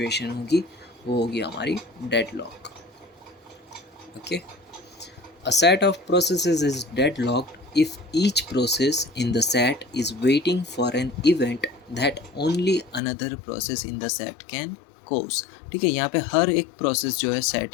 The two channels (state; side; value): drops out; right; at 13.0 s